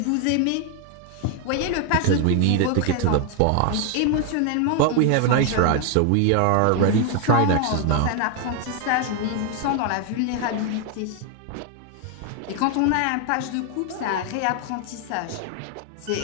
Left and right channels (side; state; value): both; different; correlation 0.01